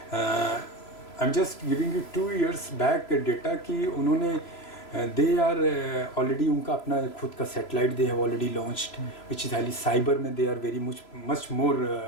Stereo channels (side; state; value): right; late; 3.0 ms